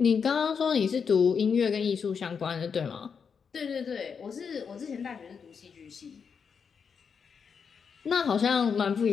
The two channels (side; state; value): right; quieter; 6.3 dB